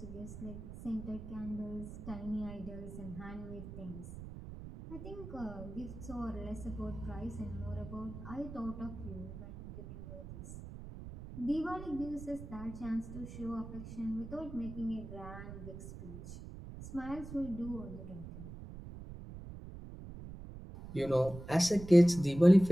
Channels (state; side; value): noise; right; rumble, 11 dB below the sound